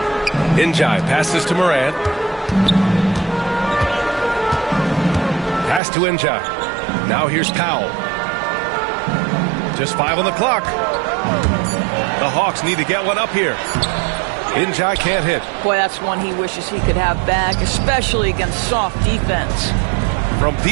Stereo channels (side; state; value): left; drops out; at 5.8 s